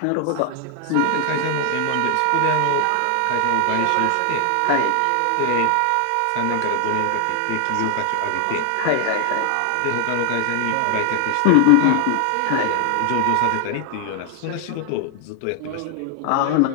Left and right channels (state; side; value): different; both; correlation 0.00